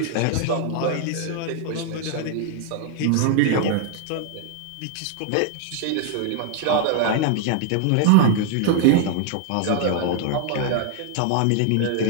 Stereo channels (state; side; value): different; both; correlation 0.00